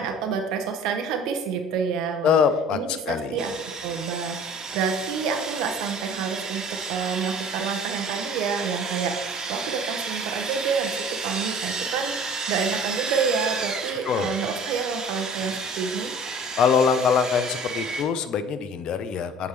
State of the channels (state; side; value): normal; both; correlation 0.46